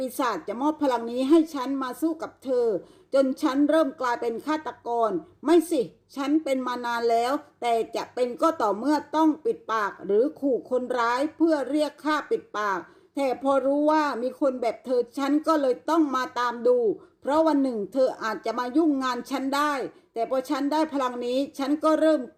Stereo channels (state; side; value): identical; both; correlation 1.00